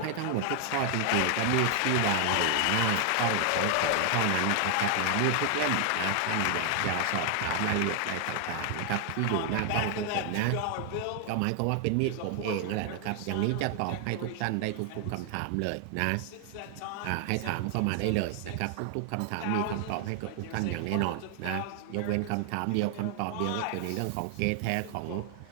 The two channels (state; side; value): different; both; correlation 0.00